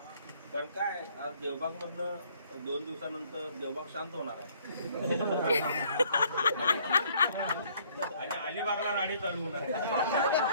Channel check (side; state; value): both; inverted; correlation -0.62